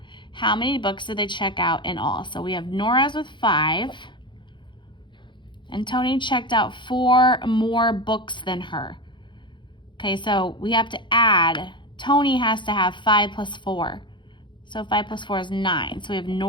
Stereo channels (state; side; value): late; right; 0.23 ms